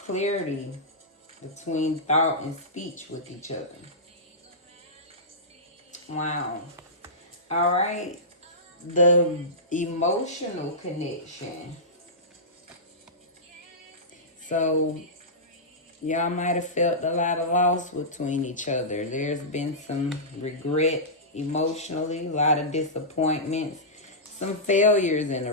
between thought and speech with each other. Wow. All right. The emotional connection. So y'all might have felt a lot of loss between each other. There's been some regret emotionally, a lot of disappointments, some failures in the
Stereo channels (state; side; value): normal; both; correlation -0.16